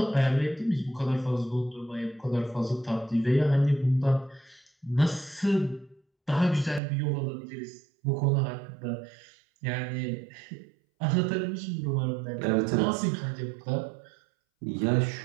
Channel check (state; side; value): drops out; left; at 6.8 s